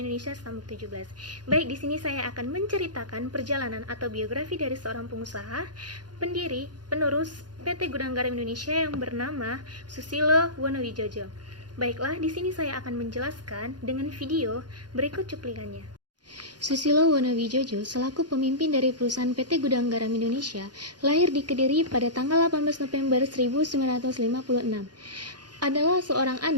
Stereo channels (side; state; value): left; late; 0.70 ms